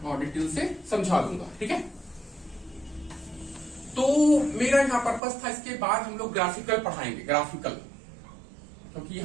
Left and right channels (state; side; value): drops out; left; at 5.2 s